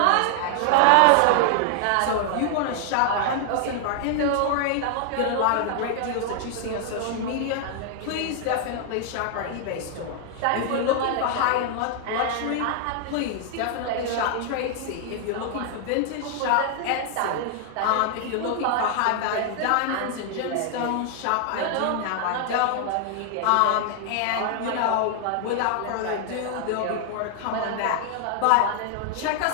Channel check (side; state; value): both; different; correlation 0.00